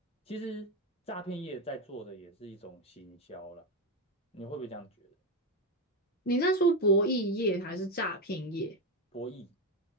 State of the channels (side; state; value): both; normal; correlation 0.11